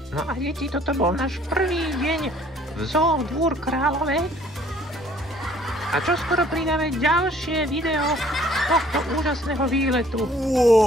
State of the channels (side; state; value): both; normal; correlation 0.58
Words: No a deti, toto bol náš prvý deň v zoo Dvůr Králové. A čoskoro pridáme ďalšie video z tohto úžasného výletu.